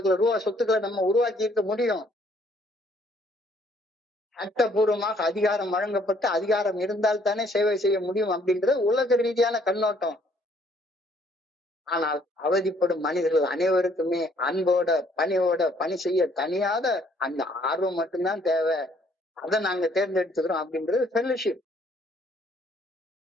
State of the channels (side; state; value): both; normal; correlation 0.64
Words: ரூபாய் சொத்துக்களை நம்ம உருவாக்கி இருக்க முடியும். சட்டபூர்வமாக அதிகாரம் வழங்கப்பட்டு அதிகாரம் இருந்தால் தானே சேவை செய்ய முடியும் அப்படின்றது உலக ரீதியான கண்ணோட்டம். ஆனால் அவதிப்படும் மனிதர்கள் அனைவருக்குமே அன்போட பணியோட பணி செய்ய தனியாத அந்த ஆர்வம் மட்டும்தான் தேவை. அதை நாங்க தேர்ந்தெடுத்துக்கிறோம் அப்படின்றது ஃபெல்லோஷிப்.